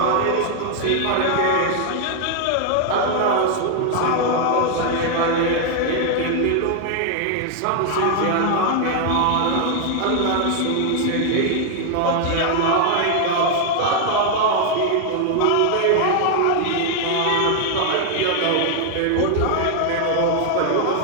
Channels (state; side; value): different; both; correlation 0.00